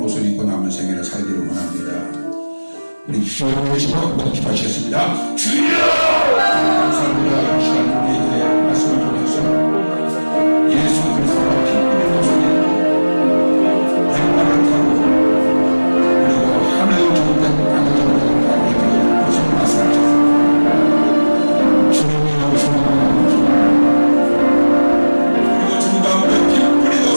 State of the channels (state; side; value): inverted; both; correlation -1.00